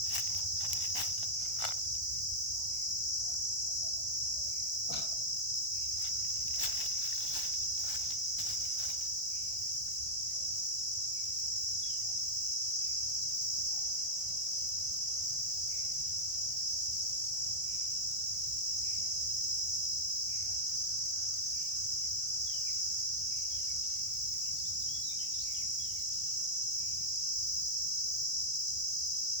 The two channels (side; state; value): left; late; 1.4 ms